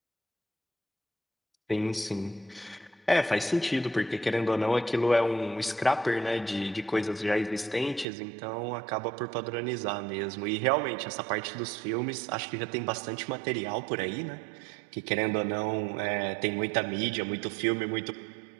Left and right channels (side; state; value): left; drops out; at 8.1 s